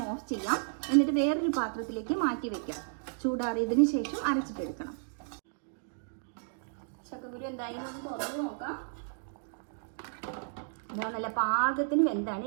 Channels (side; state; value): left; silent; digital silence